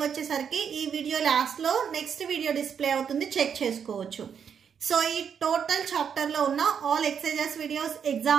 వచ్చేసరికి ఈ video last లో next video display అవుతుంది, check చేసుకోవచ్చు. So ఈ total chapter లో ఉన్న all exercises videos,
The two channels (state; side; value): quieter; left; 7.4 dB